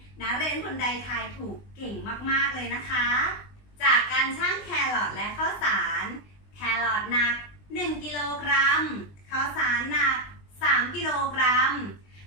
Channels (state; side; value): late; right; 20 ms